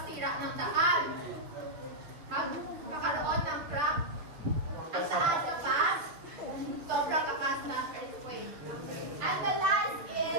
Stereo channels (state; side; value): late; left; 6.6 ms